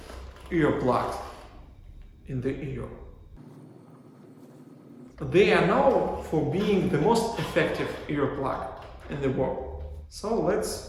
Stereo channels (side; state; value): both; identical; correlation 1.00